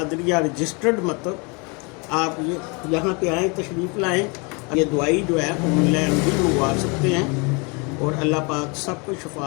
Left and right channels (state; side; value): quieter; right; 31.2 dB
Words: रजिस्टर्ड मतलब आप ये यहाँ पे आएँ, तशरीफ़ लाएँ। ये दवाई जो है ऑनलाइन भी मंगवा सकते हैं, और अल्लाह पाक सबको